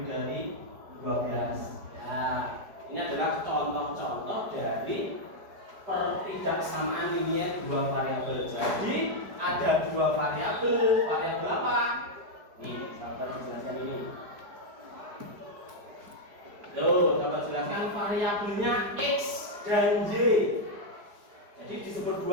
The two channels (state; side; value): late; left; 4.9 ms